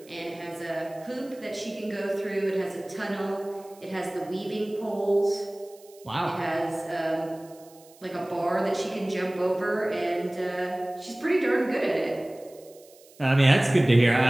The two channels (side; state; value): right; noise; hiss, 26 dB below the sound